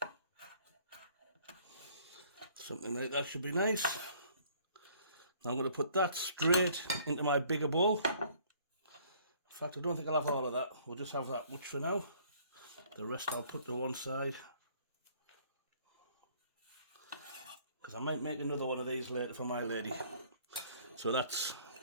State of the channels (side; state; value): both; inverted; correlation -0.58